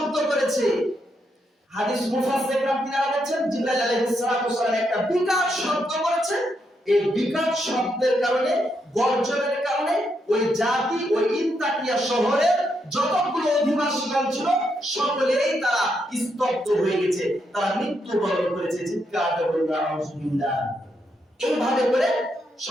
করেছে। হাদিস মুফাসসিররা তিনারা বলেন জিবরাইল আলাইহিস সালাতু ওয়াসালাম একটা বিকট শব্দ করেছে। এই বিকট শব্দের কারণে, গর্জনের কারণে ওই জাতি, ওই ইনতাকিয়া শহরের যতগুলো অধিবাসীগণ ছিল সকলেই তারা স্তব্ধ হয়ে গেছে, তারা মৃত্যুবরণ করেছে। চিৎকার করে বলুন আউযুবিল্লাহ। এইভাবে করে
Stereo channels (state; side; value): normal; both; correlation 0.80